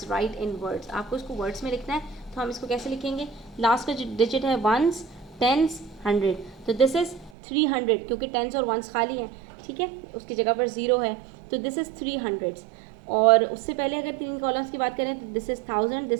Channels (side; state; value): left; drops out; at 7.3 s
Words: right in words. आपको इसको वर्ड्स में लिखना है, तो हम इसको कैसे लिखेंगे, लास्ट का जो डिजिट है 1s 10s 100, तो दिस इज़ 300 क्योंकि 10s और 1s खाली हैं। ठीक है, उसकी जगह पर 0 है, तो दिस इज़ 300। और उससे पहले अगर 3 कॉलम्स की बात करें तो this is 1000,